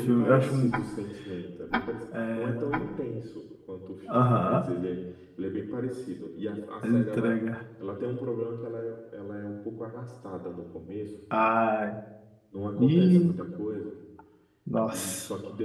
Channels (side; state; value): both; identical; correlation 1.00